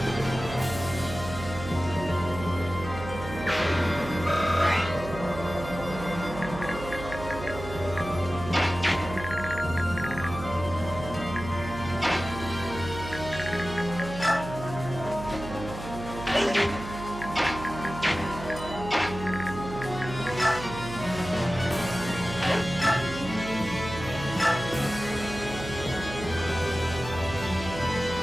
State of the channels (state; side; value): noise; right; hum, 10 dB below the sound